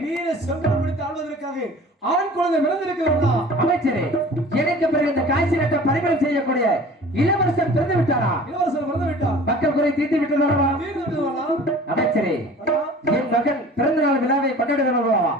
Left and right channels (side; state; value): both; normal; correlation 0.44